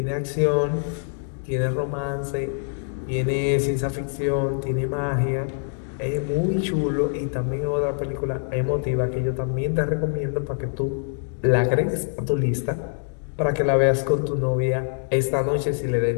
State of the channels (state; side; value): silent; right; digital silence